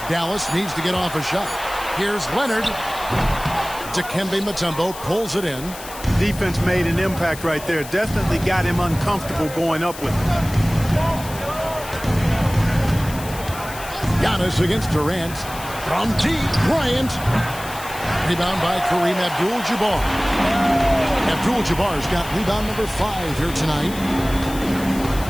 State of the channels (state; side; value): noise; left; hiss, 14 dB below the sound